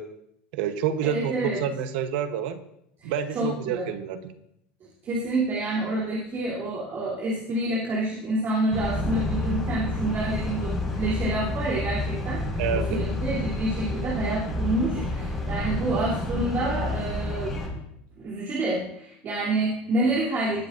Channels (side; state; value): both; normal; correlation 0.39